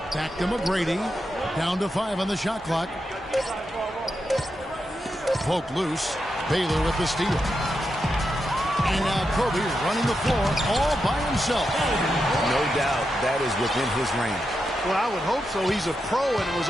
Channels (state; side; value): normal; both; correlation 0.86